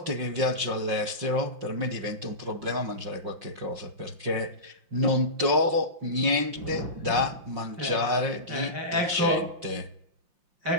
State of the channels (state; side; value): late; left; 5.5 ms